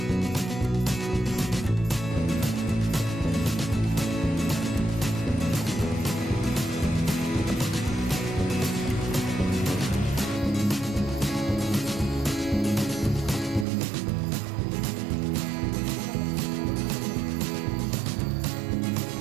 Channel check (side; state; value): left; drops out; at 13.7 s